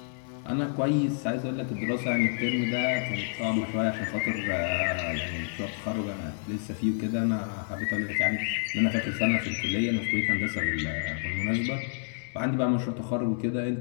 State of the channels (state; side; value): silent; right; 59 dB below the other